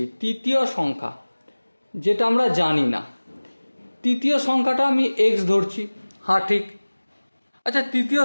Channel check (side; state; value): both; inverted; correlation -1.00